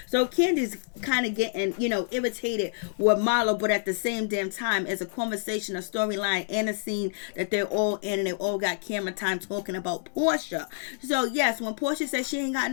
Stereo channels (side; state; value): right; silent; digital silence